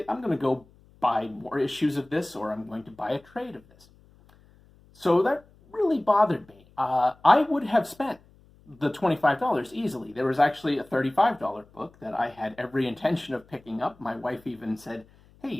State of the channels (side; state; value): left; noise; hum, 28 dB below the sound